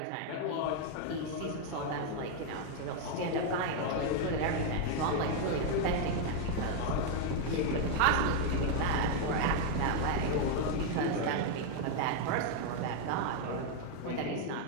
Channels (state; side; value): different; both; correlation 0.01